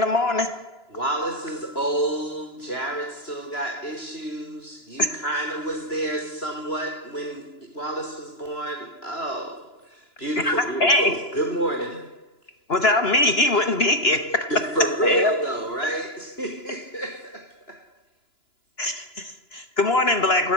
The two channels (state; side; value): late; right; 2.9 ms